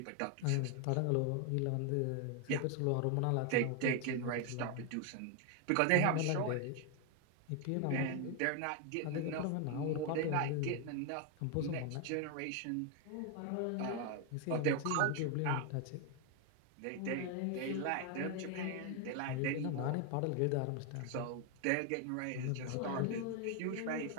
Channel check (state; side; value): different; both; correlation 0.01